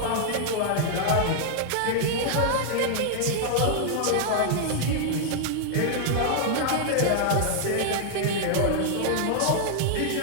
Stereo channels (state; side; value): different; both; correlation 0.00